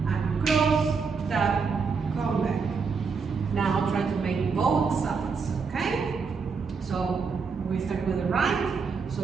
And cross, tap, come back. Now try to make both sides, okay? So we start with the right. So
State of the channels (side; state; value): left; quieter; 5.3 dB